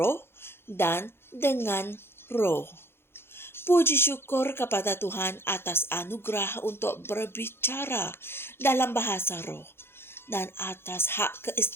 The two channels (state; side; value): late; right; 0.11 ms